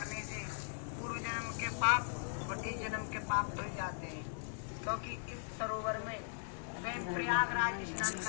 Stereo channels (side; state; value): right; silent; 52 dB below the other